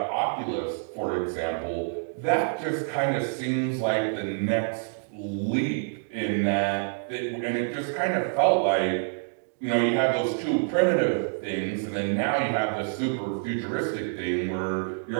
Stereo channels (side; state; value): left; silent; digital silence